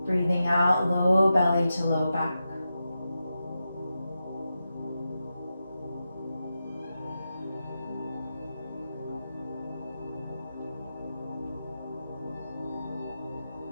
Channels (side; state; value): both; inverted; correlation -0.89